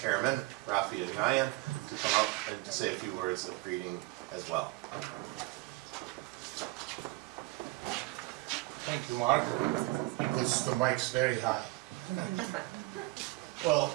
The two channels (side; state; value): left; quieter; 22.0 dB